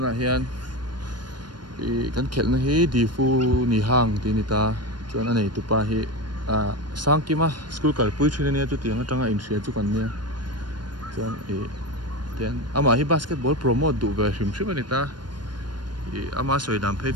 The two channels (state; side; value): late; left; 0.71 ms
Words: hian kan khel na hi Diphu Nihang ti ta chuan anei tupa hi sangkima school kalpui thina nia chu tianga tanga in hria chu kan nia chuan tian ama hi basketball promote du ve hrim ani ta ama soi dam phei